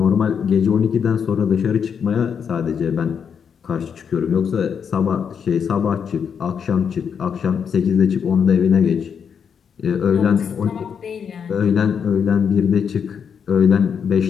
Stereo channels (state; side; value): quieter; right; 7.1 dB